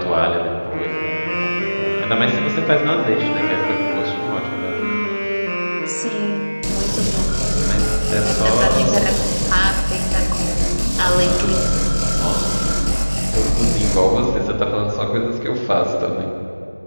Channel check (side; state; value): both; inverted; correlation -1.00